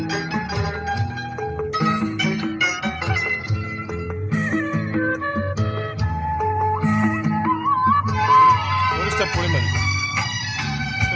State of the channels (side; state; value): both; identical; correlation 1.00